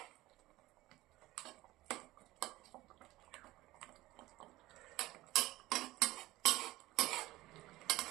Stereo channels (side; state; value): left; quieter; 17.8 dB